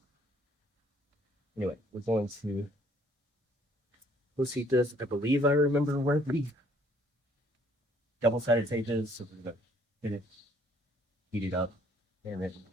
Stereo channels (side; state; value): both; normal; correlation 0.63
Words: anyway, we're going to heat this. I believe I remember where the double-sided tape is, so we're gonna hit it, heat it up, and then